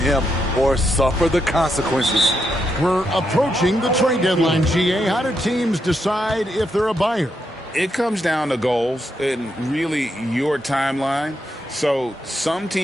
or suffer the consequences. We're approaching the trade deadline, GA. How do teams decide if they're a buyer? It comes down to goals and really your timeline. So some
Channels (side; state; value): both; normal; correlation 0.81